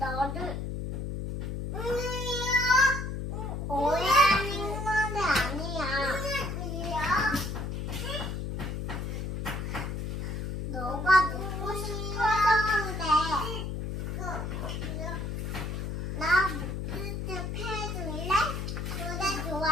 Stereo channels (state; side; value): noise; left; hum, 4 dB below the sound